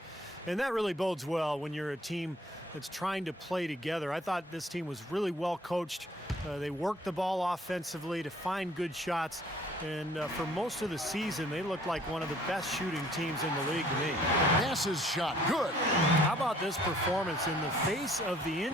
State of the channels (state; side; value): normal; both; correlation 0.58